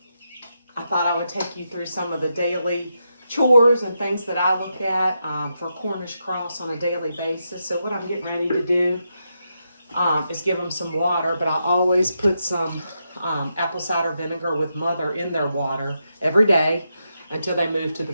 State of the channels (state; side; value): inverted; both; correlation -0.84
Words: I thought I would take you through some of the daily chores and things that I look at for Cornish Cross on a daily basis. So what I'm getting ready to do is give them some water, but I always put some apple cider vinegar with mother in their water every day until they move to the